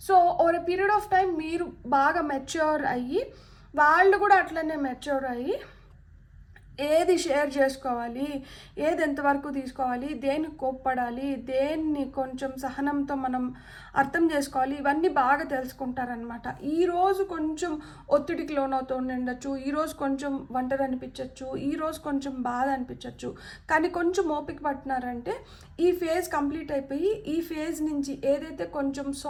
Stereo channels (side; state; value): both; identical; correlation 1.00